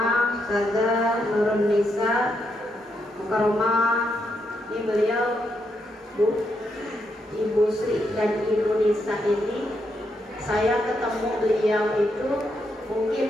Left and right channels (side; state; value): both; normal; correlation 0.80